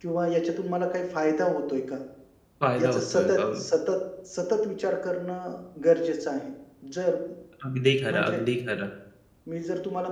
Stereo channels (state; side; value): identical; both; correlation 1.00